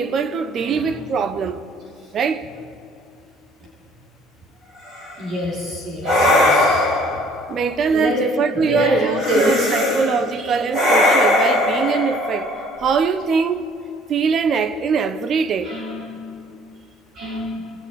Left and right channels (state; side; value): normal; both; correlation 0.57